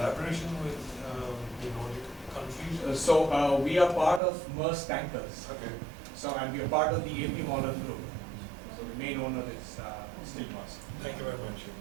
with the Nordic countries? So we are part of Maersk Tankers. Okay. So and we are part of the AP Moller Group. So the main owner is still Maersk. Thank you very much.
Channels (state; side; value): drops out; left; at 4.2 s